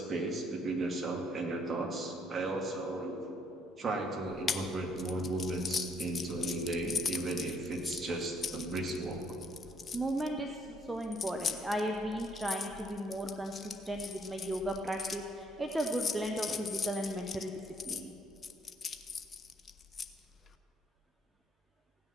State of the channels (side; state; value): both; normal; correlation 0.68